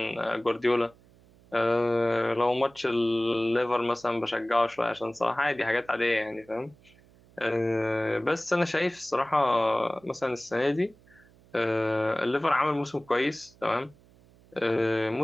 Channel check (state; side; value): noise; right; hum, 28 dB below the sound